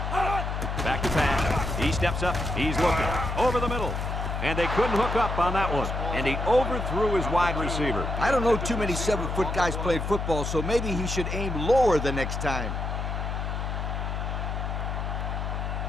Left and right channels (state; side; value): noise; left; hum, 3 dB below the sound